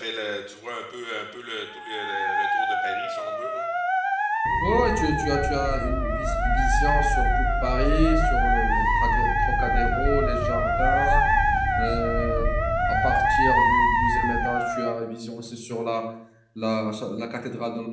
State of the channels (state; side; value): identical; both; correlation 1.00